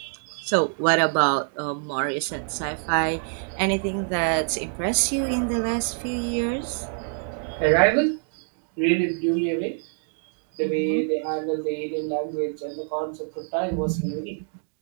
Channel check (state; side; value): silent; left; 61 dB below the other